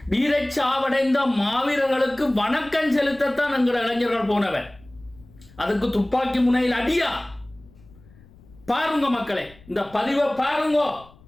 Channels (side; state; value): left; noise; rumble, 25 dB below the sound